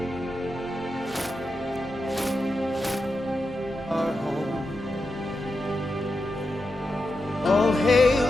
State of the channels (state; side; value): normal; both; correlation 0.89